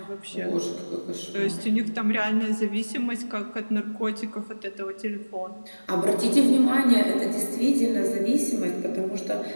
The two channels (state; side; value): inverted; both; correlation -1.00